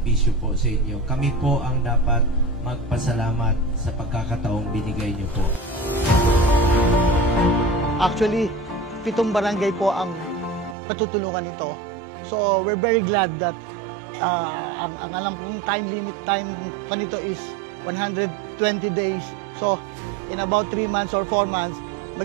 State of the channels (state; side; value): drops out; left; at 10.8 s